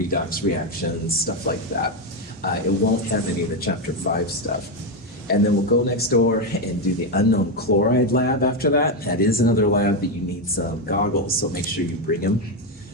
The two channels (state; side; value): normal; both; correlation 0.08